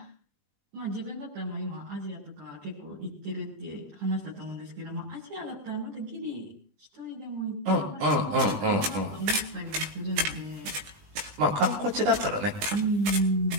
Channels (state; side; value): late; left; 20 ms